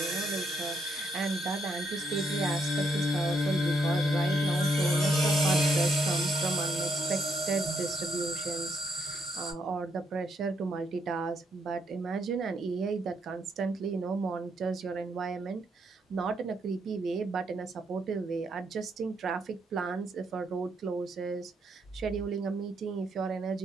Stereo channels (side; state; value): both; normal; correlation 0.76